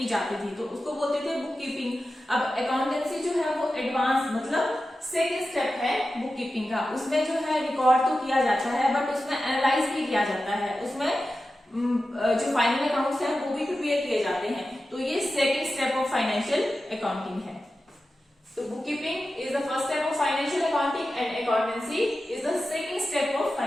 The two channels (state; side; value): normal; both; correlation 0.93